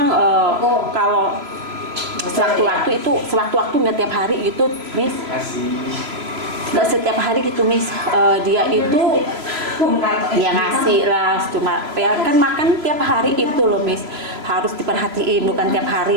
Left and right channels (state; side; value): late; left; 3.0 ms